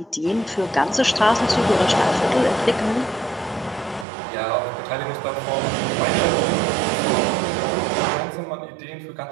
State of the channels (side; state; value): left; drops out; at 4.0 s